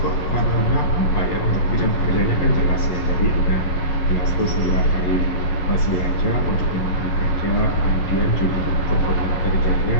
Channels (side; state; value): right; late; 11 ms